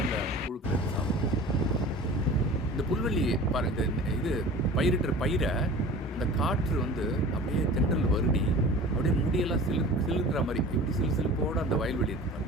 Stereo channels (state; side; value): normal; both; correlation 0.40